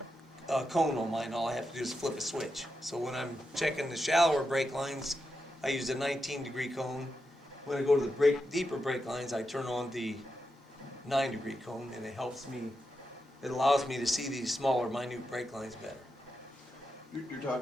cone on mine. All I have to do is flip a switch. So when I'm checking the shallower break lines, I use a 19-degree cone. When I go to the deeper break lines, I turn on the 9-degree cone, and it helps me, it allows me to see these smaller, minute break lines better. You're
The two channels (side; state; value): both; normal; correlation 0.87